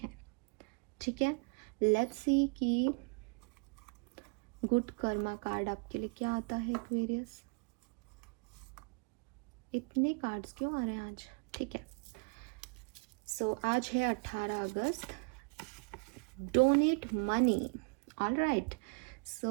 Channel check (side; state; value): left; quieter; 34.5 dB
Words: ठीक है? लेट्स सी कि गुड कर्मा कार्ड आपके लिए क्या आता है एक्वेरियस। इतने कार्ड्स क्यों आ रहे हैं आज? ठीक है, सो आज है 18 अगस्त। Donate money. ऑलराइट,